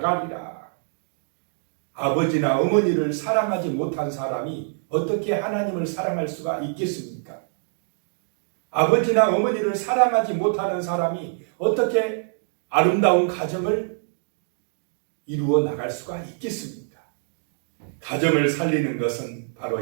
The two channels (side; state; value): left; silent; digital silence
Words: 아버지나 어머니를 사랑하지 못한 사람이 어떻게 하나님을 사랑할 수가 있겠습니까? 아버지나 어머니를 사랑하지 못하는 사람이 어떻게 아름다운 가정을 이루어 나갈 수가 있겠습니까? 가정을 살리는 것은